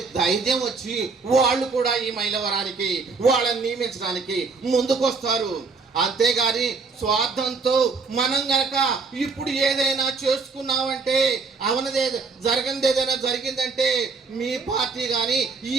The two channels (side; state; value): left; quieter; 4.4 dB